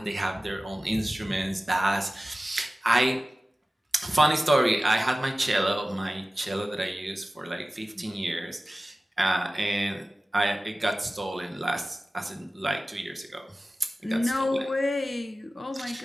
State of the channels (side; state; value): both; normal; correlation 0.96